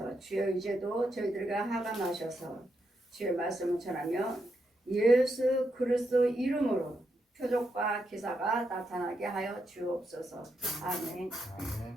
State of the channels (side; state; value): both; normal; correlation 0.82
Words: 주여 이제도 저희들에게 하감하셔서 주의 말씀을 전하며 예수 그리스도 이름으로 표적과 기사가 나타나게 하여 주옵소서. 아멘.